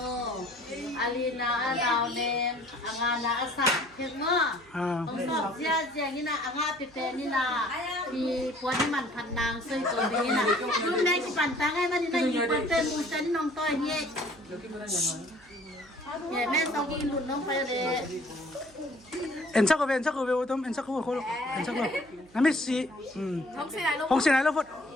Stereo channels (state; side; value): noise; right; hum, 27 dB below the sound